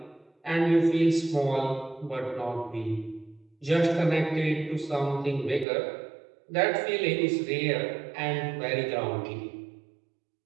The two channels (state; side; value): drops out; left; at 5.7 s